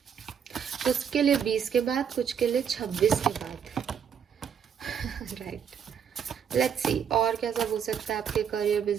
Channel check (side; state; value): left; quieter; 7.8 dB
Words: कुछ के लिए 20 के बाद, कुछ के लिए 26 के बाद राइट। लेट्स सी और क्या सब हो सकता है आपके करियर,